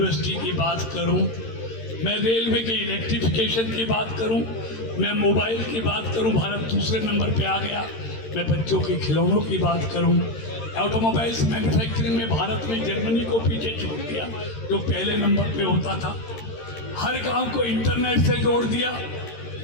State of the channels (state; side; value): late; right; 13 ms